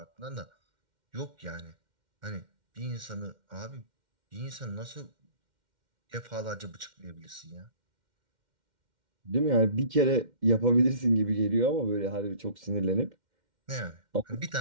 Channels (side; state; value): left; late; 2.1 ms